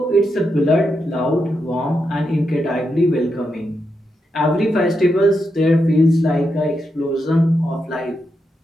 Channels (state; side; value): normal; both; correlation 0.85